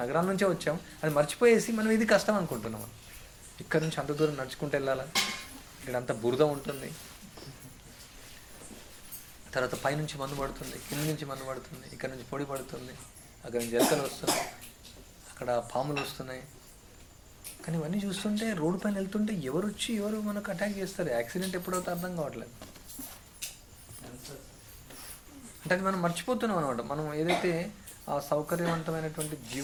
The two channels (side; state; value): both; identical; correlation 1.00